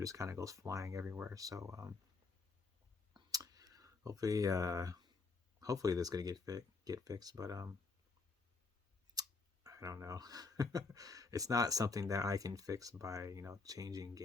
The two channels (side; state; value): right; quieter; 4.1 dB